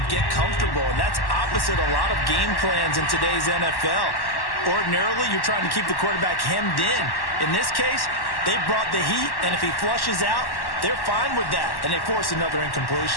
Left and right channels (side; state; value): right; late; 1.1 ms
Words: get comfortable, and that's opposite a lot of game plans in today's NFL. Ordinarily, you're trying to keep the quarterback hemmed in. In this case, they brought the heat, and if he flushes out, they're fine with that, and they force another